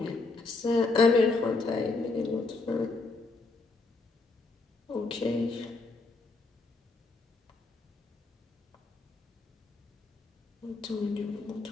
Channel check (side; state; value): right; quieter; 3.6 dB